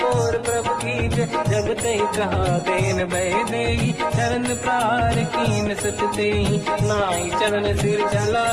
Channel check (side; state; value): both; identical; correlation 1.00